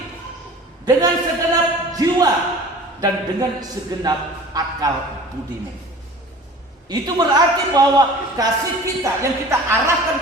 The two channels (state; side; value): normal; both; correlation 0.43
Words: dengan segenap jiwa, dan dengan segenap akal budimu. Itu berarti bahwa kasih kita yang kita